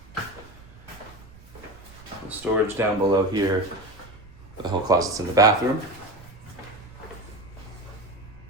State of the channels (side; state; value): right; noise; rumble, 21 dB below the sound